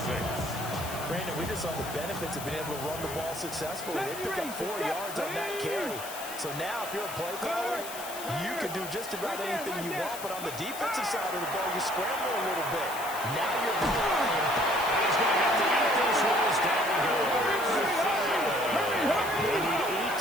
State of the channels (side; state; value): left; noise; hiss, 11 dB below the sound